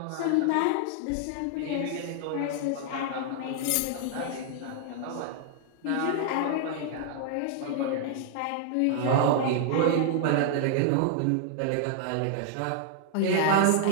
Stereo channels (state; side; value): different; both; correlation -0.01